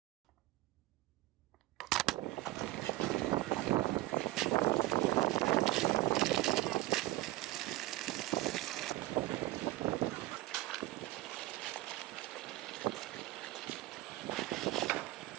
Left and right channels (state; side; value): quieter; left; 18.0 dB